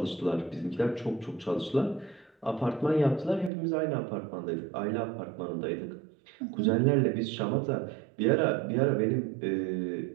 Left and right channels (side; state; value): left; drops out; at 3.5 s